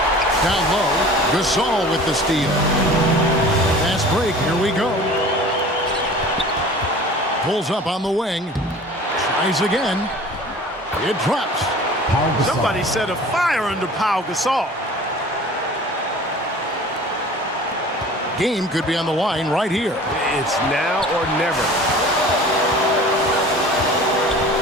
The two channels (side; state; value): both; normal; correlation 0.43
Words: Down low, Gasol with the steal. Fast break, here we go. Pulls up on the wing. Tries again. It drops. Somebody set a fire under Pau Gasol. Game could be on the line right here. It's now or never.